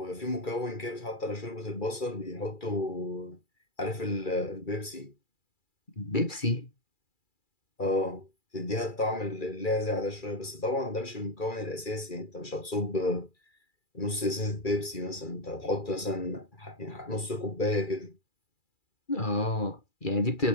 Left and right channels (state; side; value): late; right; 2.3 ms